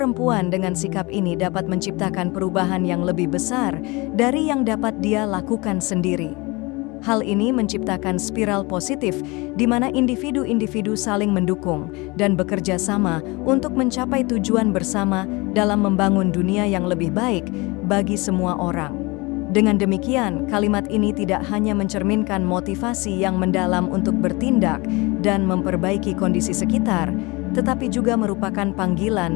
dengan sikap ini dapat menciptakan perubahan yang lebih besar dari yang dapat dia lakukan sendiri. Hal ini menciptakan spiral positif di mana individu-individu saling mendukung dan bekerja sama untuk mencapai tujuan bersama dalam membangun dunia yang lebih baik bagi semua orang. Dengan demikian, kalimat ini tidak hanya mencerminkan motivasi yang mendalam untuk bertindak dan memperbaiki kondisi sekitar, tetapi juga merupakan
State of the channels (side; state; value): right; quieter; 25.0 dB